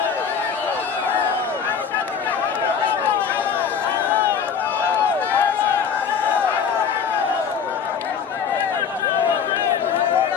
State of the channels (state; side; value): quieter; right; 6.8 dB